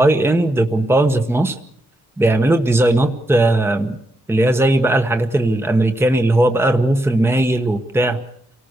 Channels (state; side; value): normal; both; correlation 0.84